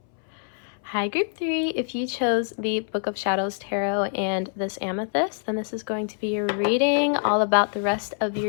Hi, group 3. If you chose the Book of Shadows Tarot and this amethyst, then this is going to be your reading all about the rest of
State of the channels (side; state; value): right; silent; 62 dB below the other